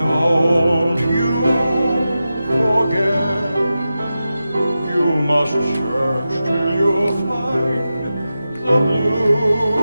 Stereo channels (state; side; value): inverted; both; correlation -0.92